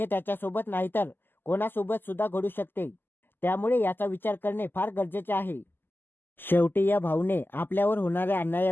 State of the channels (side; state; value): right; late; 0.095 ms